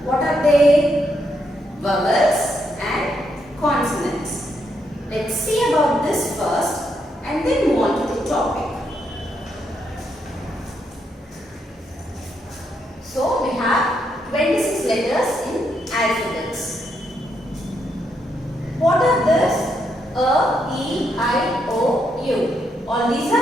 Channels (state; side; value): normal; both; correlation 0.78